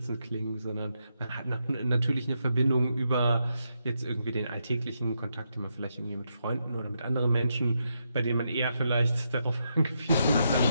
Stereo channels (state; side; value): inverted; both; correlation -0.82